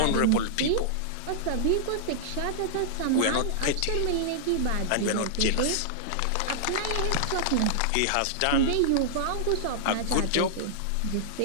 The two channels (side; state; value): both; different; correlation -0.01